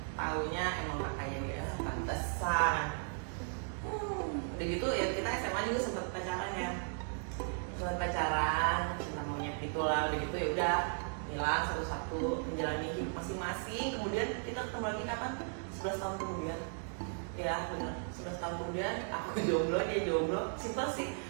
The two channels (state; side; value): silent; left; 54 dB below the other